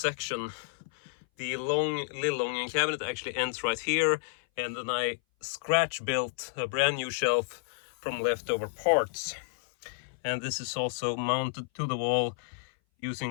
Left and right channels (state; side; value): silent; right; 57 dB below the other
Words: The Lillången cabinet actually ends right here, and then I scratch built a brand new shelf from leftover parts. And this is also mounted to the wall